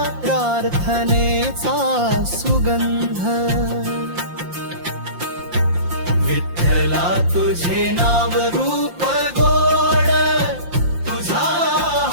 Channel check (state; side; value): late; left; 5.7 ms